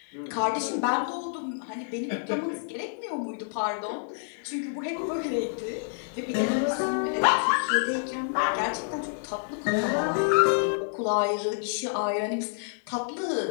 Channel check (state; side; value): silent; right; 59 dB below the other